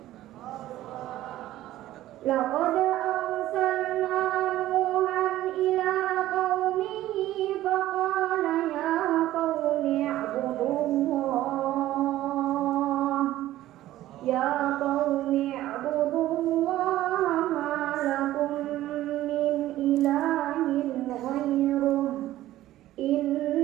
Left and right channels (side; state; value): left; quieter; 14.6 dB